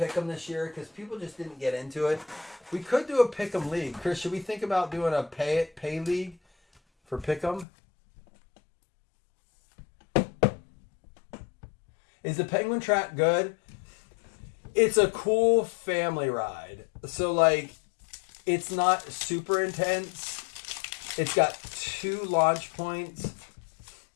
this year because people just didn't get into it. We could do a Pick'em league. Chris, should we think about doing a pay league for Pick'em? Is the Penguin Track good? It's a cool family ride. So, it's not super intense. It's got 2 launch points.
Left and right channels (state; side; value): drops out; right; at 7.7 s